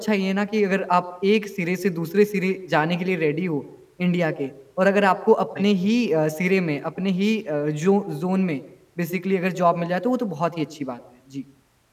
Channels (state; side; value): identical; both; correlation 1.00